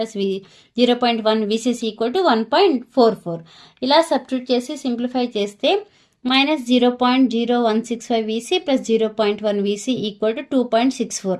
0.1 VCC equal to 1.44. ఇలా సబ్స్టిట్యూట్ చేసి సింప్లిఫై చేస్తే -0.0165 VC plus 0.1 VC equal to 2.64.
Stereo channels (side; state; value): both; identical; correlation 1.00